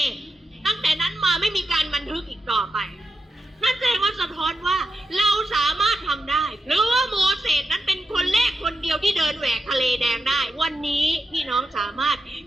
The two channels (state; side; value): normal; both; correlation 0.88